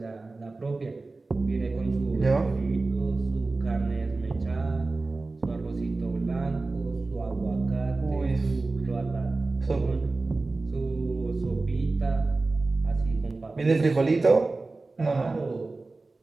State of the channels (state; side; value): quieter; left; 3.4 dB